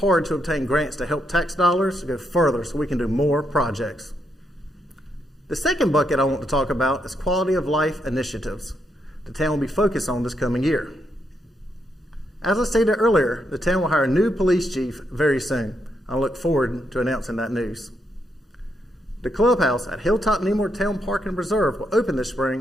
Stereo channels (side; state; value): both; normal; correlation 0.80